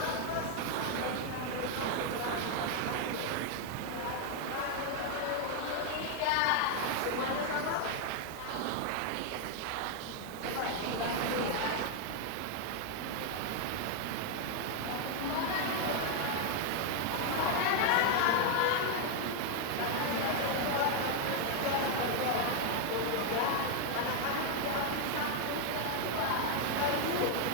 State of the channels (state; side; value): different; both; correlation 0.00